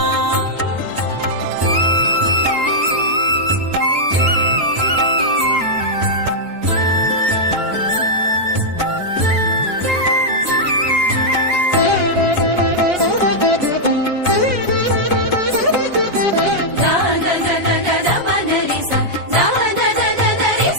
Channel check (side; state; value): left; late; 6.6 ms